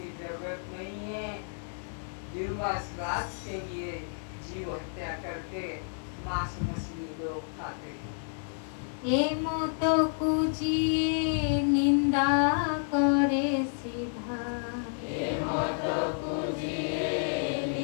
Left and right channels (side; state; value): right; silent; digital silence